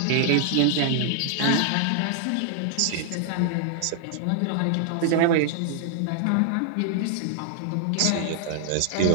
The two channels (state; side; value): different; both; correlation 0.00